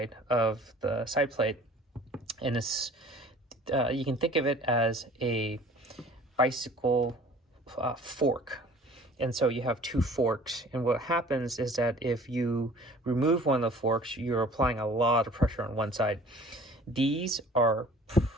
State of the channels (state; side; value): normal; both; correlation 0.49